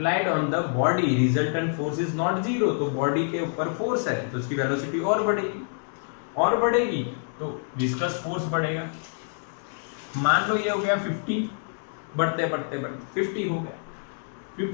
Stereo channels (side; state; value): right; silent; digital silence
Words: on the body, resultant force is not 0। तो बॉडी के ऊपर फोर्स है तो उसकी वेलोसिटी और बढ़ेगी। और बढ़ेगी तो विस्कस फोर्स बढ़ेगा। मान लो ये हो गया 50, बढ़ते बढ़ते बढ़ते 50 हो गया,